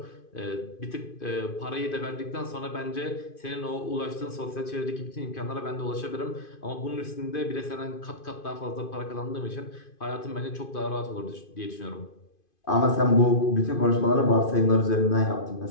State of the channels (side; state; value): right; late; 2.5 ms